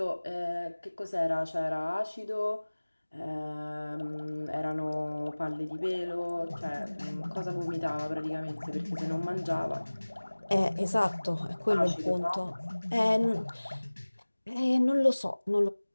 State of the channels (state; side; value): inverted; both; correlation -1.00